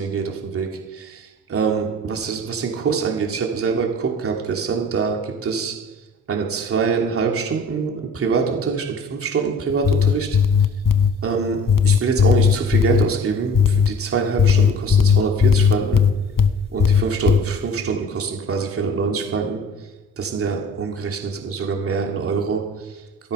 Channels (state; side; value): normal; both; correlation 0.45